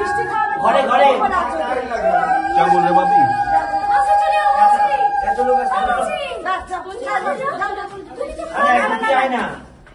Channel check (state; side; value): identical; both; correlation 1.00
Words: ঘরে ঘরে क्या बोल रहे बाबी? আরে একজন চায় না,